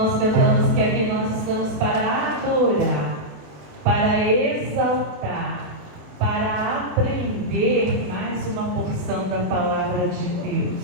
cantamos que aqui nós estamos para adorar, para exaltar, para aprender mais uma porção da palavra de Deus.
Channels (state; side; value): late; left; 28 ms